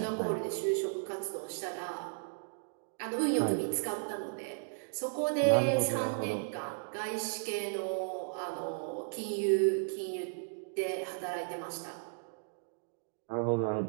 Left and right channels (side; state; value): left; silent; digital silence